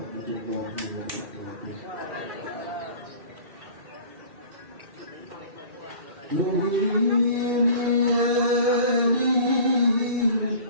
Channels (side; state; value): left; late; 2.7 ms